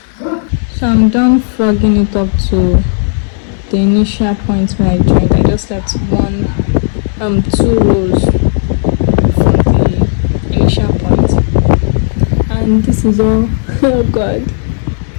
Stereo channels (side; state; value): right; silent; digital silence